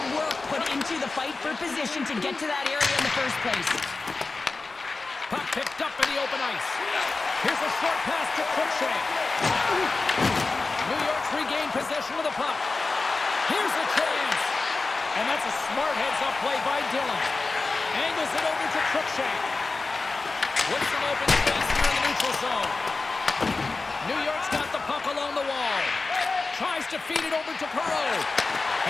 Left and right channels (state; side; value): quieter; right; 3.8 dB